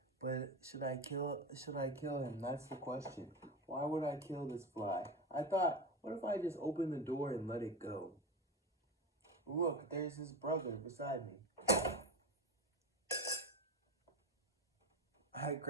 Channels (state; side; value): normal; both; correlation 0.23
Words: But should I kill him? That's the question. Why would I kill this fly? I thought, what if I just open the door and let it go? Look, there's his brother beside me. I